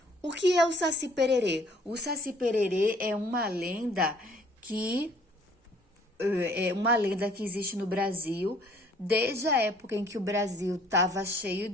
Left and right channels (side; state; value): both; normal; correlation 0.58